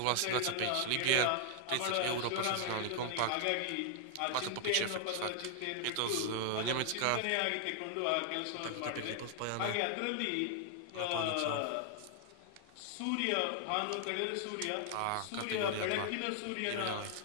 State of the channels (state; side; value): different; both; correlation 0.00